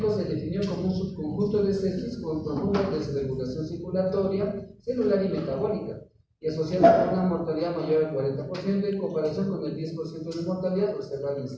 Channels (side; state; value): both; identical; correlation 1.00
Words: se definió como un subconjunto de sepsis con profunda desregulación circulatoria, celular y metabólica, y asociado con una mortalidad mayor al 40% en comparación con el 10% de mortalidad observada en